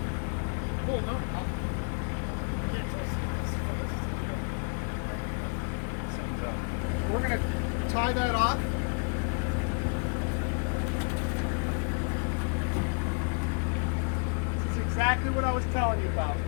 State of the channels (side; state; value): right; quieter; 39.8 dB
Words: Oh, no. We're gonna tie that off. This is exactly what I was telling you about.